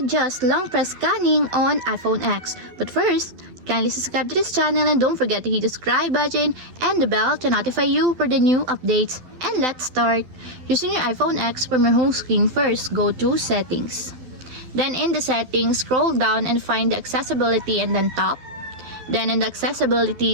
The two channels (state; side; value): late; left; 12 ms